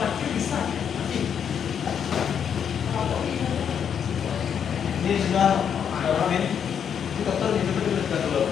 bisa. ini sudah Ramin. Ini dokter ini betul-betul sudah keluar.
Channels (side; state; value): right; quieter; 8.0 dB